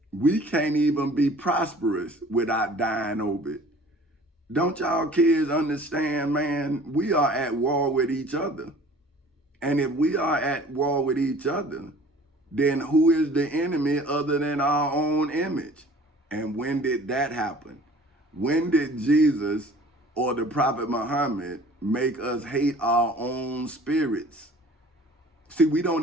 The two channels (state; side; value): normal; both; correlation 0.48